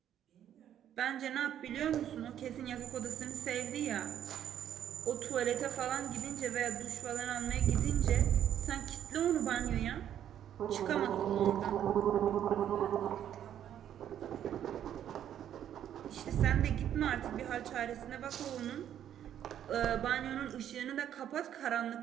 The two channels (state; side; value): quieter; left; 10.3 dB